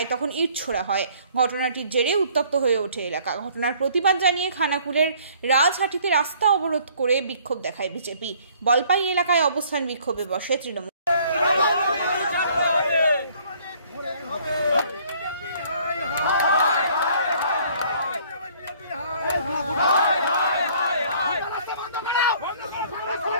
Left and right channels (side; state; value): both; inverted; correlation -0.58